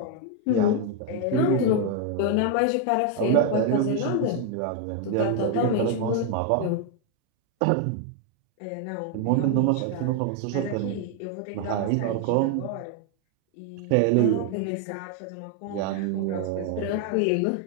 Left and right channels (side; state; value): both; different; correlation 0.01